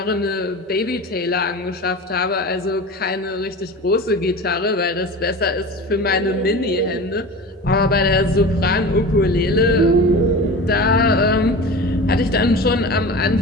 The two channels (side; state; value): both; normal; correlation 0.33